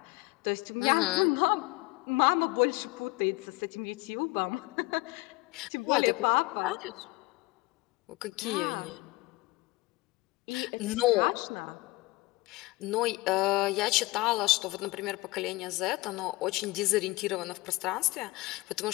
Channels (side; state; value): right; quieter; 22.2 dB